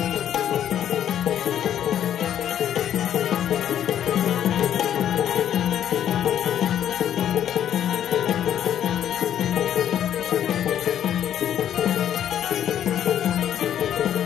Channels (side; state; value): right; quieter; 10.3 dB